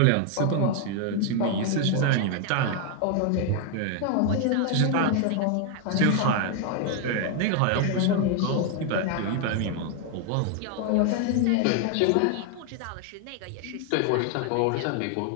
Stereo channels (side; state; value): both; different; correlation 0.01